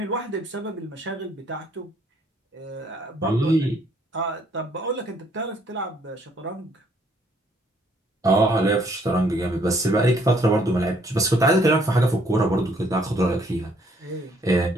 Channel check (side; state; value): both; normal; correlation 0.65